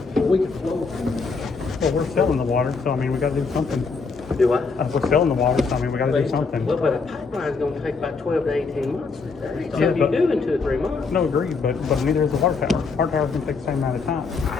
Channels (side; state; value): right; quieter; 4.6 dB